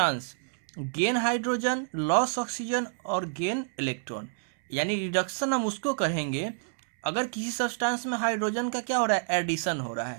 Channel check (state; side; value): silent; left; 59 dB below the other